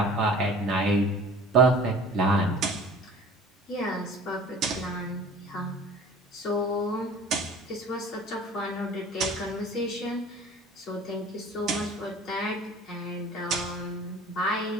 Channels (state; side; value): normal; both; correlation 0.45